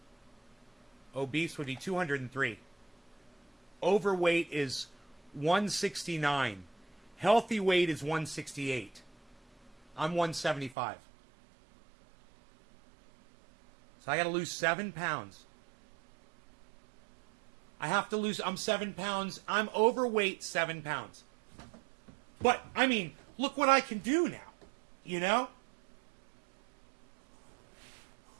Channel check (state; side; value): drops out; left; at 10.8 s